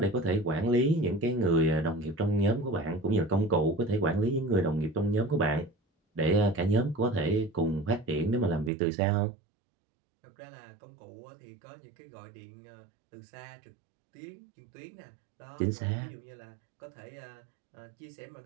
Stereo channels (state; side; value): drops out; left; at 8.7 s